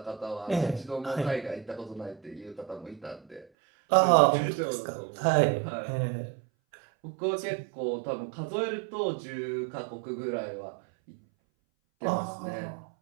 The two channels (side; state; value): left; drops out; at 3.5 s